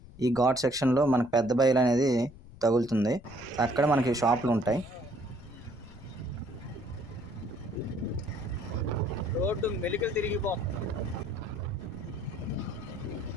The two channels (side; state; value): left; noise; rumble, 20 dB below the sound